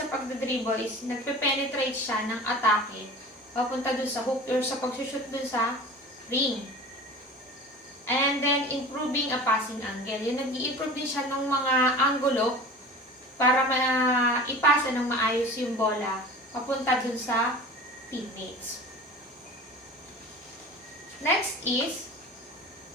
pagdadribble is nagpe-penetrate siya ng atake papunta dun sa hoop or sa pagsushoot dun sa ring. And then, improving a passing angle. Yung nag-i-improve din siya ng mga anggulo para ipasa ng maayos yung bola papunta dun sa teammates. Next is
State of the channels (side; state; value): both; normal; correlation 0.38